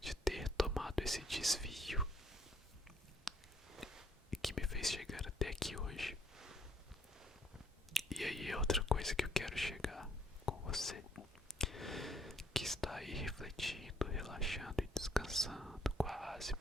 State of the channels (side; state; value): both; normal; correlation 0.65